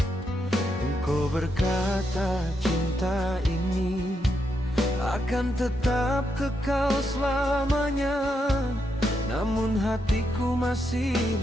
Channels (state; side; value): normal; both; correlation 0.81